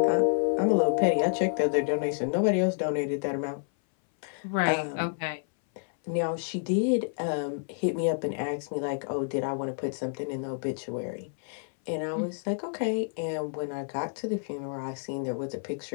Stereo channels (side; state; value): right; silent; 59 dB below the other